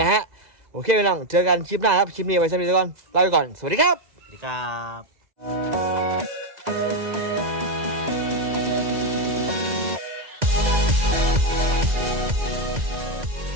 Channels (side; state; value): left; late; 2.0 ms